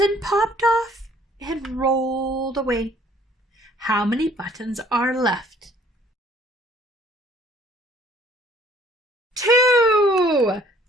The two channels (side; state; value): both; normal; correlation 0.59